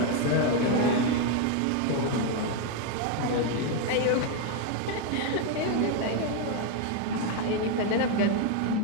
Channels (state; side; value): different; both; correlation 0.01